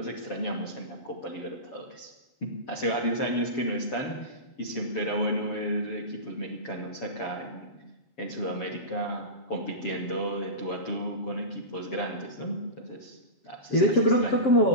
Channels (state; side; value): late; right; 7.2 ms